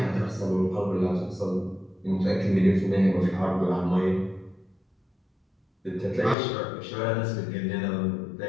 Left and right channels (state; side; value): drops out; right; at 6.4 s